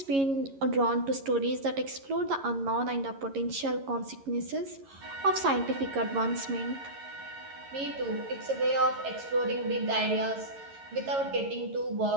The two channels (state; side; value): late; left; 11 ms